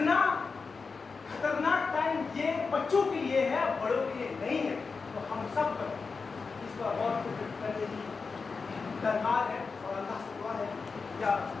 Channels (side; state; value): right; quieter; 4.7 dB